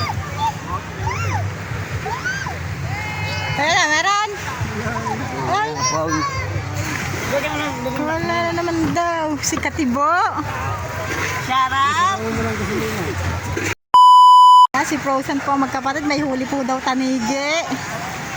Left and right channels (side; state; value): both; identical; correlation 1.00